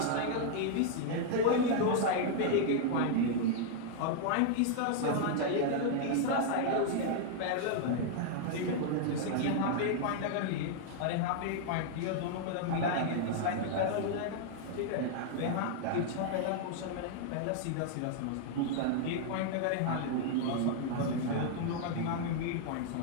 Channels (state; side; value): different; both; correlation -0.01